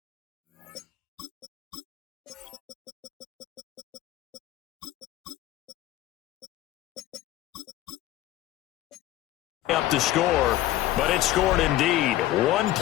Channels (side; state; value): right; quieter; 14.8 dB